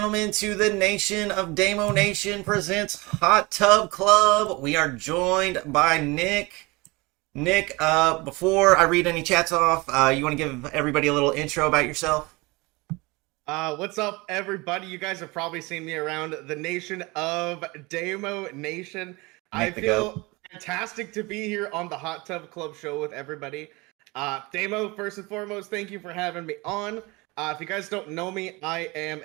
to the Nation of Damo Nation presents Hot Tub Club. We are joined by Nick. Nick, before I read any chats off, you want to give everybody a little intro about yourself? What's up, everybody? You guys have probably seen me around the Nation of Damo Nation. I feel fantastic to be here on the Hot Tub Club show with everybody. Damo, first and foremost, thank you for having me on. If you guys don't know me, I am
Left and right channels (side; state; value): left; quieter; 24.5 dB